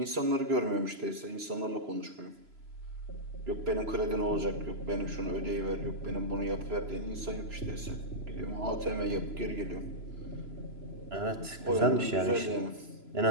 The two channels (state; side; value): late; left; 3.0 ms